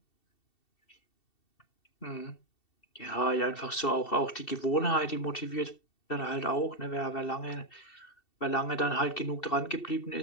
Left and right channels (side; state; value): right; late; 2.7 ms